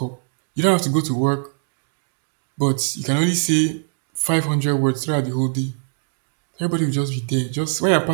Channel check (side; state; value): left; silent; 58 dB below the other